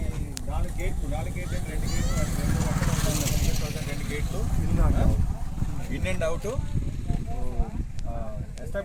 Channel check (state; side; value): identical; both; correlation 1.00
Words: 4 గేట్లు 2 గేట్లు 2 గేట్లు ఇన్ అండ్ అవుట్